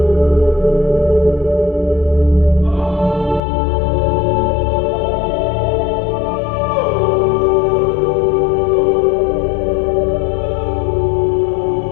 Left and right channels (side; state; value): right; drops out; at 3.4 s